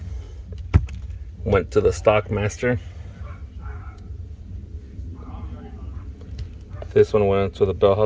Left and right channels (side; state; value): both; identical; correlation 1.00